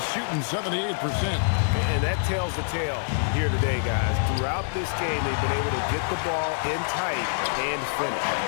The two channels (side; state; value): right; silent; digital silence